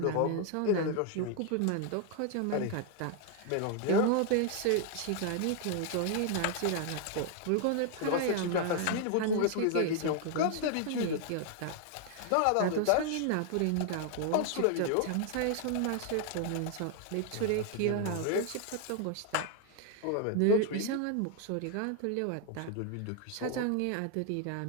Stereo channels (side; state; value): both; different; correlation 0.00